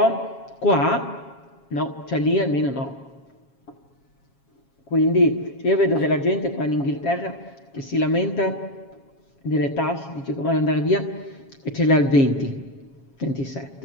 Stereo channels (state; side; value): late; right; 7.3 ms